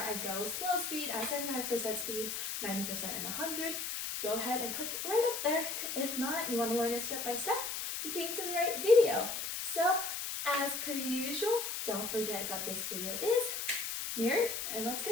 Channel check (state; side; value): noise; left; hiss, 3 dB below the sound